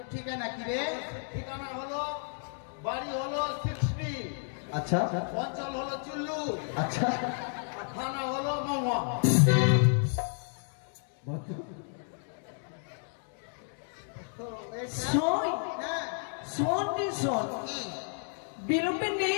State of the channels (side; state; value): right; silent; 57 dB below the other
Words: ঠিকানা কি রে? ঠিকানা হলো, বাড়ি হলো 60, আচ্ছা অঞ্চল হলো চুল্লু, আচ্ছা আর থানা হলো মহুয়া। শোন শোন রে শোন, বিলম্বে